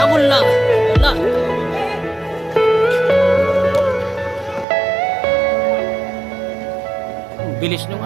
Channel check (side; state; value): left; drops out; at 4.7 s